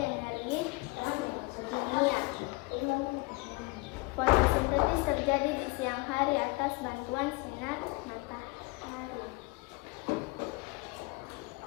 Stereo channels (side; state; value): right; quieter; 25.2 dB